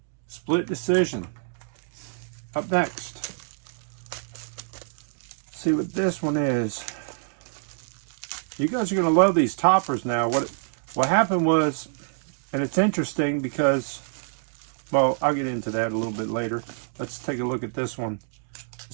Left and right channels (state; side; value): silent; left; 61 dB below the other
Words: split decision. Up next, see what this one is. You guys are going to love these toppers now. What happened was, and it's interesting because, well, I'll get into that a little bit later. Let's take a look at this one.